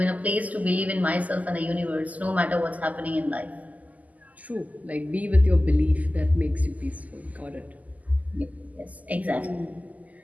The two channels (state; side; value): late; left; 0.077 ms